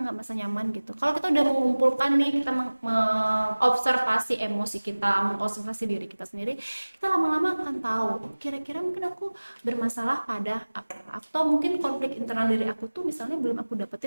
merasa nyaman gitu. Kalau kita udah mengumpulkan nih, kita mengobservasi emosi kita, mengobservasi diri kita sendiri, kita lama-lama akan tahu, oh, kira-kira mungkin aku bermasalah pada apa, atau mungkin konflik internal diri aku tuh misalnya belum aku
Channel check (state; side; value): inverted; both; correlation -1.00